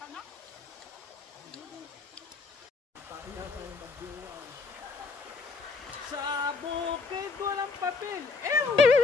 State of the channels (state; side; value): quieter; right; 4.2 dB